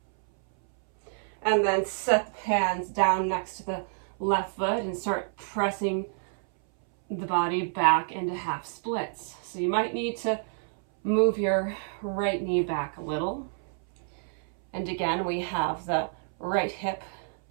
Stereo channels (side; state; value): left; silent; 59 dB below the other